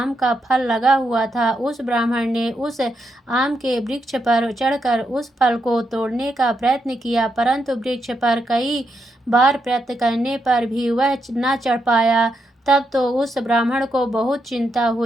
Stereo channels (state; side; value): normal; both; correlation 0.82